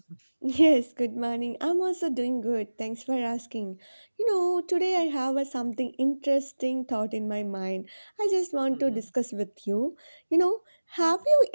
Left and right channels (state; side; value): inverted; both; correlation -1.00